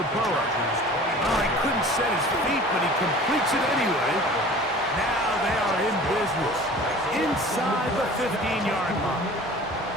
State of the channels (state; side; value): normal; both; correlation 0.43